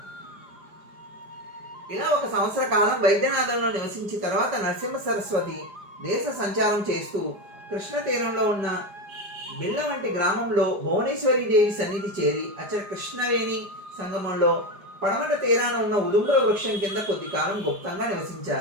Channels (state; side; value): late; left; 4.9 ms